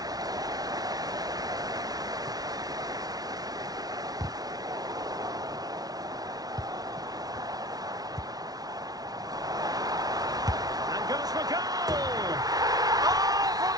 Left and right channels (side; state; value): left; late; 0.19 ms